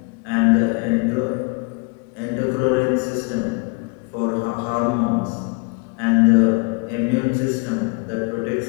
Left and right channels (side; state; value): right; quieter; 30.9 dB